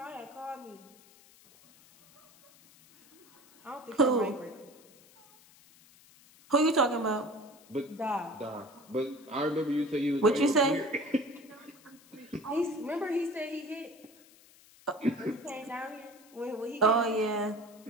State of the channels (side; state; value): left; noise; hiss, 26 dB below the sound